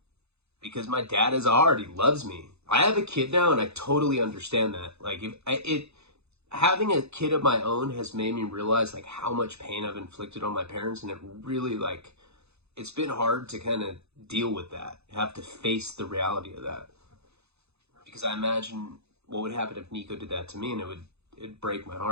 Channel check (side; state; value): left; late; 0.80 ms